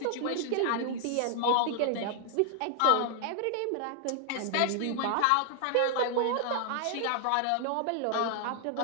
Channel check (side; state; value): both; different; correlation 0.00